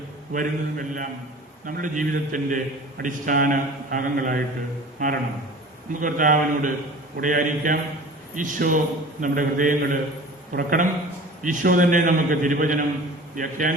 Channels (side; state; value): both; normal; correlation 0.41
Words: വരുന്നതുമെല്ലാം നമ്മുടെ ജീവിതത്തിൻ്റെ അടിസ്ഥാന ഭാഗങ്ങളായിട്ട് മാറണം. നമുക്ക് കർത്താവിനോട് കൂടെയായിരിക്കാം. ഈശോ നമ്മുടെ ഹൃദയങ്ങൾ തുറക്കണം. ഈശോ തന്നെ നമുക്ക് തിരുവചനം